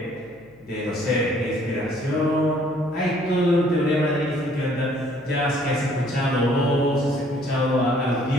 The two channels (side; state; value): left; noise; hum, 30 dB below the sound